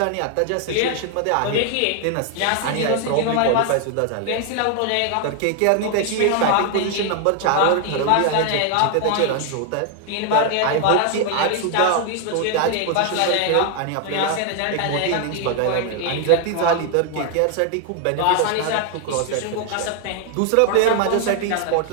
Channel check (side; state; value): both; different; correlation 0.00